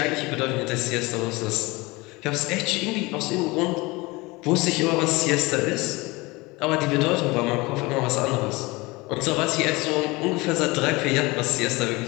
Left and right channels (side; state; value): right; quieter; 23.2 dB